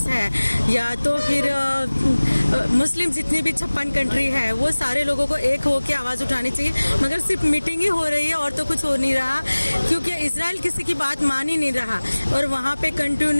हैं या तो फिर मुस्लिम जितनी भी 56 कंट्री है, वो सारे लोगों को एक होकर आवाज़ उठानी चाहिए। मगर सिर्फ मीटिंग ही हो रही है और तो कुछ हो नहीं रहा, क्योंकि इजराइल किसी की बात मान ही नहीं रहा और वहाँ पे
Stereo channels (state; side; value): inverted; both; correlation -1.00